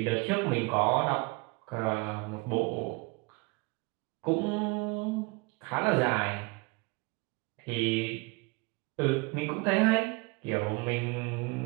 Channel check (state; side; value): quieter; left; 27.1 dB